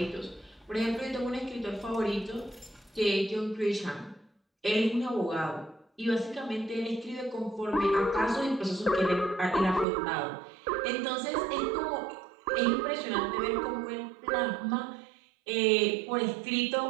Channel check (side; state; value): left; drops out; at 9.9 s